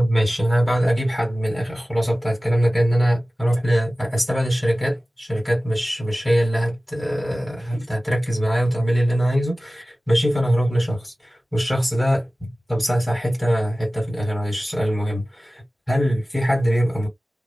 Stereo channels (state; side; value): normal; both; correlation 0.97